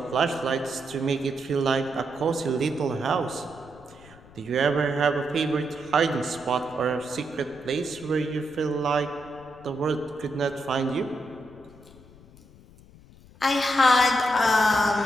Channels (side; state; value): left; noise; rumble, 23 dB below the sound